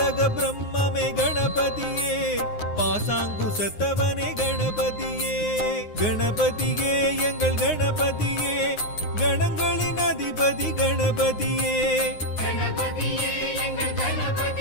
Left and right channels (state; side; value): late; right; 9.6 ms